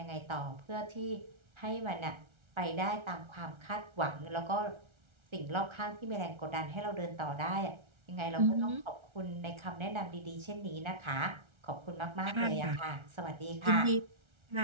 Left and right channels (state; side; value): late; left; 1.3 ms